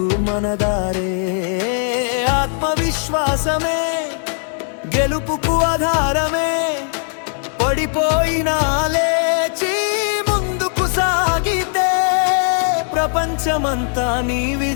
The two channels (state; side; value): silent; right; 67 dB below the other